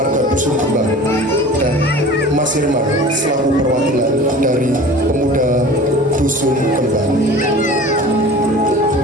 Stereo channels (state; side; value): normal; both; correlation 0.41